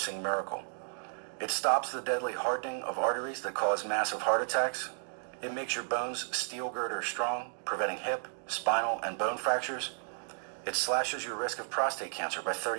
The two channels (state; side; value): silent; left; digital silence